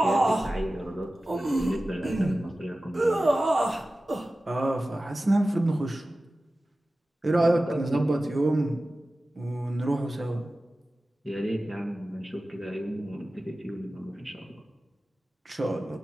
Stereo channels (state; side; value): normal; both; correlation 0.96